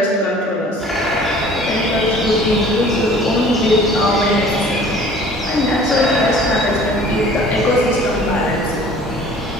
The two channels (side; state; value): both; normal; correlation 0.49